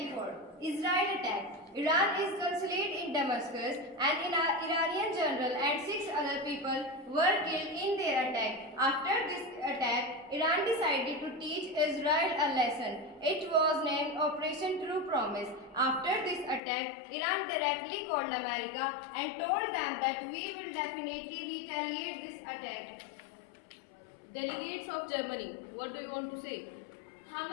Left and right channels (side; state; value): right; drops out; at 16.6 s